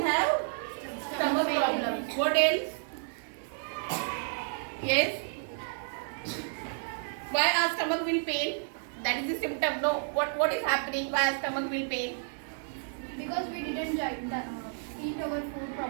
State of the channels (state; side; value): silent; left; digital silence